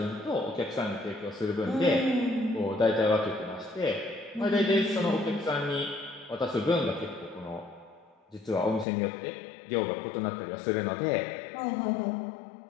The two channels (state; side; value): drops out; right; at 8.8 s